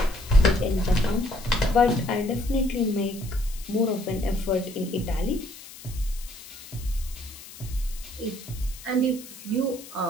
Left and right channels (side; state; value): left; noise; hiss, 16 dB below the sound